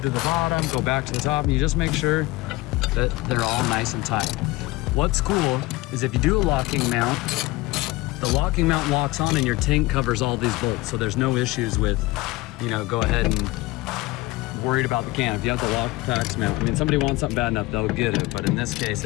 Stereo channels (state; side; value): quieter; right; 20.6 dB